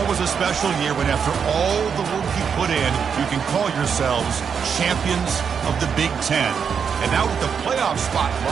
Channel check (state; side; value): quieter; left; 6.8 dB